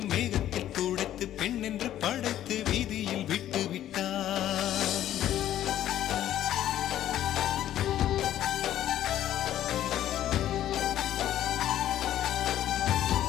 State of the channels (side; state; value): right; quieter; 12.1 dB